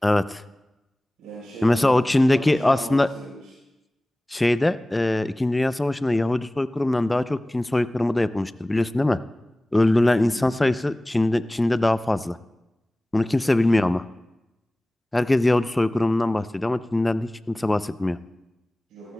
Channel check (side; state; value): both; normal; correlation 0.98